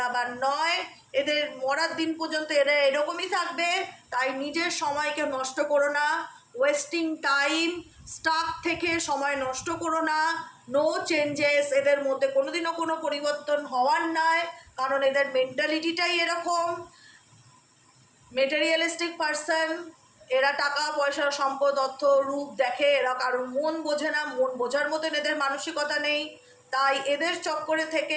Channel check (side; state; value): both; identical; correlation 1.00